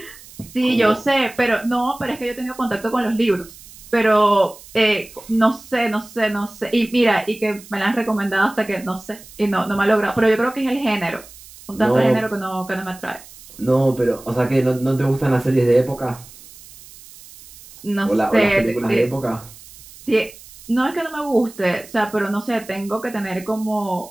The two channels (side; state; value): right; noise; hiss, 20 dB below the sound